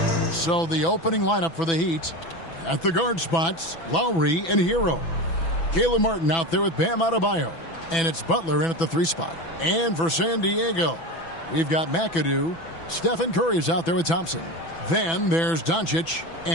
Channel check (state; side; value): late; right; 6.0 ms